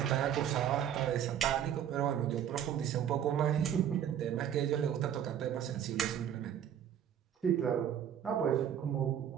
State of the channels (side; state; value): left; quieter; 9.6 dB